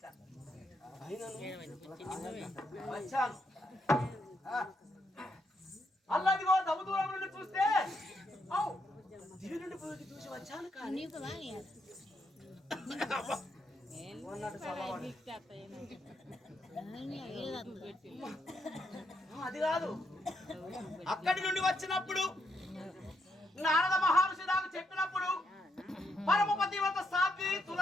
అల్లదిగో దమ్ము దూరం నుండి చూస్తే దివి నుండి చూసి వచ్చాను కానీ అది కాదు. అక్కడి నుండి వచ్చినప్పుడు నారద మహర్షి నాకు చెప్పినప్పుడు పరమపతివత సాధ్వి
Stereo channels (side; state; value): both; normal; correlation 0.78